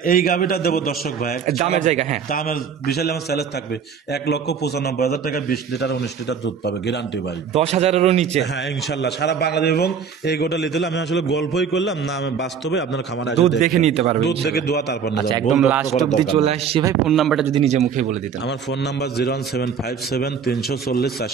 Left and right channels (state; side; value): quieter; left; 6.8 dB